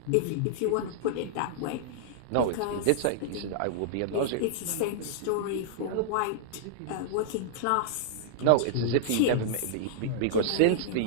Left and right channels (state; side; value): different; both; correlation -0.01